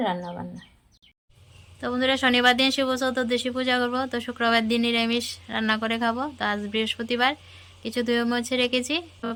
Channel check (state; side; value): identical; both; correlation 1.00